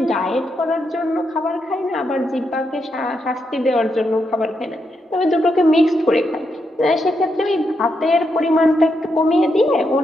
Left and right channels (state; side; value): normal; both; correlation 0.82